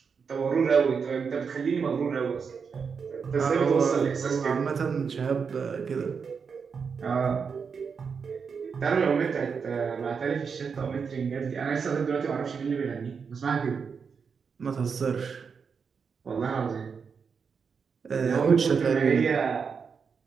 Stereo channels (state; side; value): quieter; left; 5.9 dB